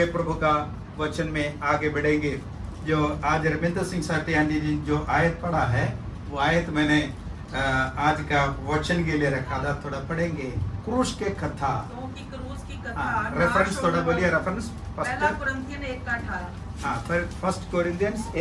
प्रभु का वचन में आगे बढ़ेंगे। जो आज रविंद्र सिंह साटियानी जी जो आयत पढ़ा है वो आयत मैंने आज का वचन के लिए रखा था, थोड़ा पढ़ेंगे। क्रूस के कथा, क्रूस की कथा रेफरेंस थोड़ा बोलिए। रेफरेंस पहला कुरिन्थियन 1:18। हाँ, फिर फर्स्ट कोरिंथियंस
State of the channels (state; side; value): identical; both; correlation 1.00